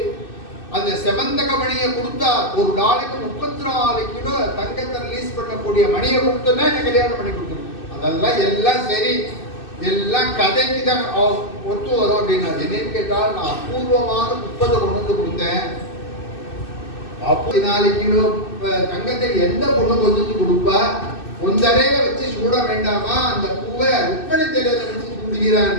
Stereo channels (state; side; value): late; right; 2.6 ms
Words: அந்த செவந்தக மணியை கொடுத்தா ஒரு நாளைக்கு 34 கிலோ தங்கத்தை ரிலீஸ் பண்ணக்கூடிய மணியை கொடுத்தோன்னா என்ன கல்யாணம் பண்ணி கொடுத்துரும். அதெல்லாம் எல்லாம் சரி, எல்லாம் கதைக்கு தான் ஒத்து வரும் அப்படின்னா. என்னன்னு கேட்டால் நான் அபூர்வமான புஷ்பத்தை கொண்டு வந்து கொடுத்தேன். 44 கிலோ தங்கத்தை எந்த பொண்ணு கொண்டு வந்து கொடுப்பா, ஒன்றரைய வச்சு சூட வேண்டாமா, அந்த பூவை ருக்மணி தேரத்தை வச்சு சூடுகிறான்